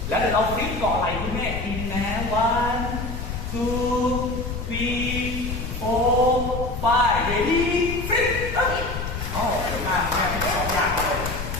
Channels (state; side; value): noise; left; rumble, 5 dB below the sound